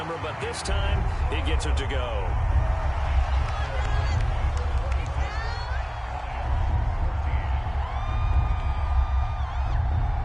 but this time he gets it to go.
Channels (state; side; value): identical; both; correlation 1.00